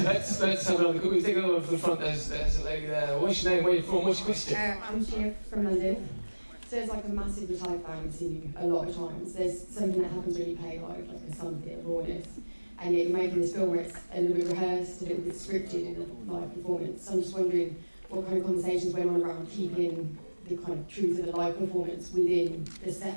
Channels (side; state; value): both; inverted; correlation -1.00